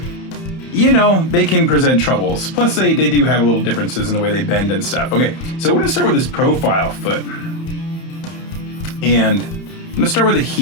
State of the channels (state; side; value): late; right; 30 ms